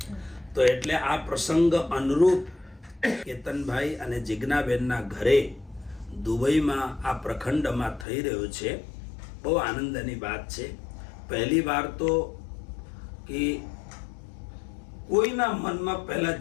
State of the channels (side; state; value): right; drops out; at 8.1 s